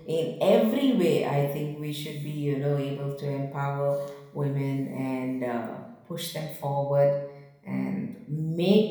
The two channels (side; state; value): both; identical; correlation 1.00